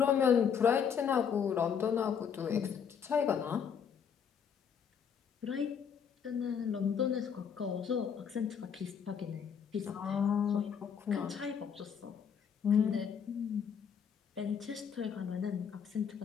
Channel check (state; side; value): quieter; right; 7.3 dB